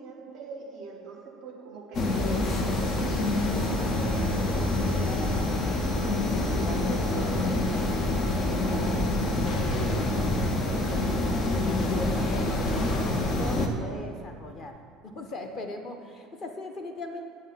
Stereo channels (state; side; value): normal; both; correlation 0.57